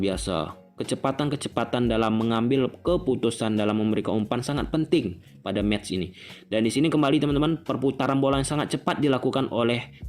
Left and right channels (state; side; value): identical; both; correlation 1.00